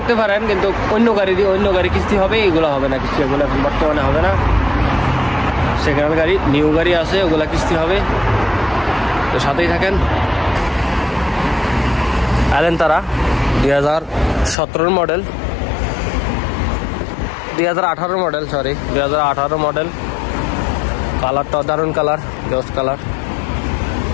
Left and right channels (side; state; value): right; drops out; at 14.6 s